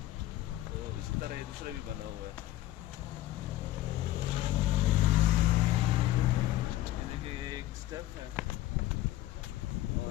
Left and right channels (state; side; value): quieter; right; 14.8 dB